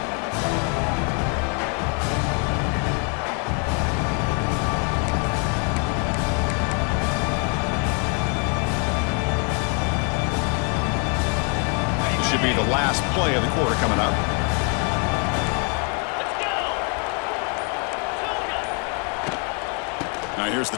Should be the last play of the quarter coming up. Now here's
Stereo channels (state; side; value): quieter; right; 35.1 dB